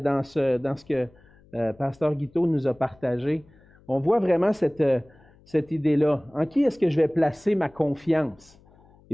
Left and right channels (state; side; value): noise; left; hum, 28 dB below the sound